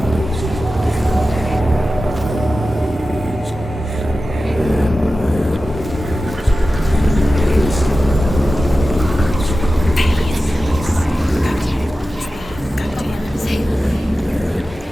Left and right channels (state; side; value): normal; both; correlation 0.94